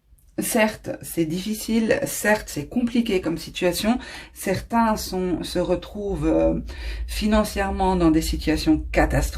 certes, c'est difficile, certes, c'est compliqué comme situation. Certains se retrouvent financièrement dans des situations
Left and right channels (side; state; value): both; identical; correlation 1.00